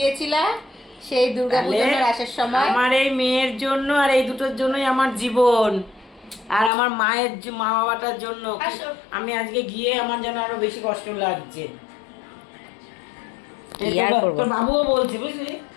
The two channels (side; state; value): right; drops out; at 6.7 s